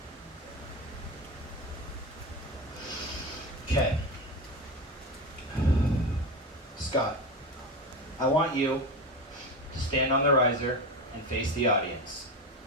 Okay. Scott, I want you to stand on the riser and face the audience.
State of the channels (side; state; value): both; normal; correlation 0.21